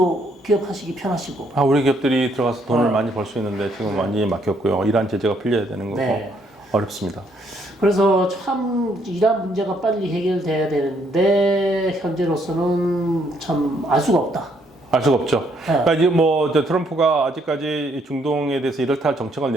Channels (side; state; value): both; normal; correlation 0.70